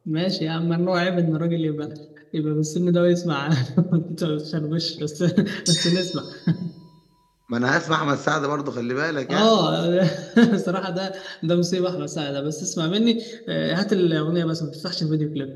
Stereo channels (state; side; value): identical; both; correlation 1.00